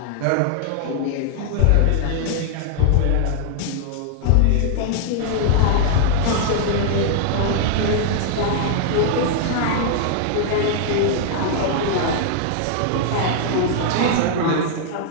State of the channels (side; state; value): both; different; correlation -0.01